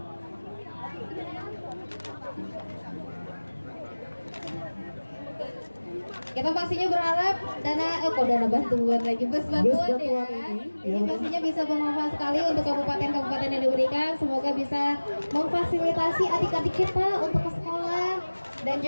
Kita pastinya berharap dana bantuan lagi bus bantuan ya. Ini pastinya bisa bermanfaat sekali untuk kabupaten-kabupaten yang diberikan. Semoga bisa memfasilitasi adik-adik kita untuk ke sekolah dan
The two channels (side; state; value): both; inverted; correlation -1.00